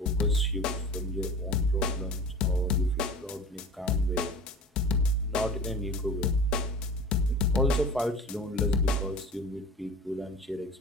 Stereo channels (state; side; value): normal; both; correlation 0.39